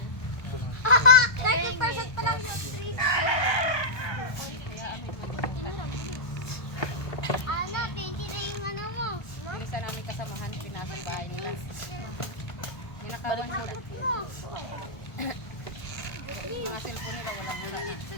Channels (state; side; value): late; right; 1.3 ms